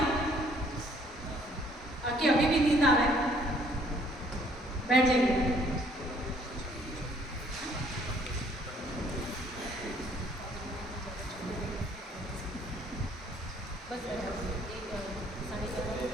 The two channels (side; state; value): both; normal; correlation 0.62